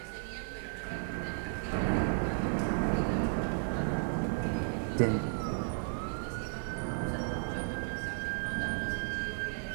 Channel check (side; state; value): left; silent; digital silence